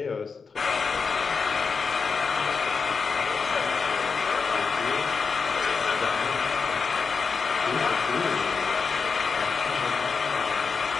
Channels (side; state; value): right; quieter; 5.2 dB